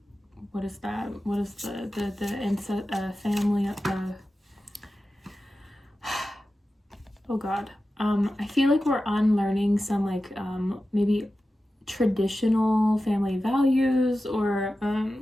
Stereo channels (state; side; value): normal; both; correlation 0.93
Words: what is that? What is the family, oh god. I feel like we're unlearning some like maybe traditional family values, or